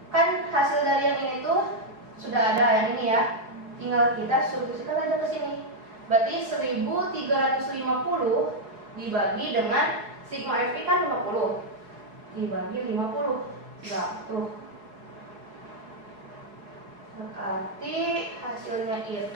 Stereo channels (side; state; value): left; late; 4.8 ms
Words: Kan hasil dari yang ini tuh sudah ada yang ini ya, tinggal kita substitusikan aja ke sini. Berarti 1350 dibagi dengan sigma FI kan 50 dibagi 50. Nah, tuh. Berarti hasilnya